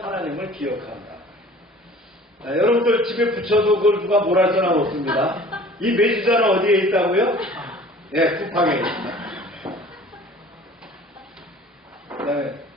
기억한다. 여러분들 집에 붙여도 그걸 누가 뭐라 할 사람 없습니다. 이 메주자는 어디에 있다고요? 쿠팡에 있습니다. 그다음에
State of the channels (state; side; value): normal; both; correlation 0.47